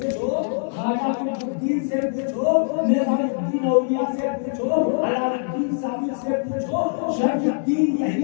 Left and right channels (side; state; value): right; silent; digital silence